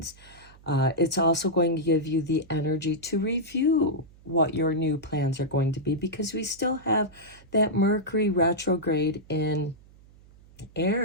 It's also going to give you the energy to review what your new plans are going to be, because we still have that Mercury retrograde in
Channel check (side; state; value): right; noise; hum, 25 dB below the sound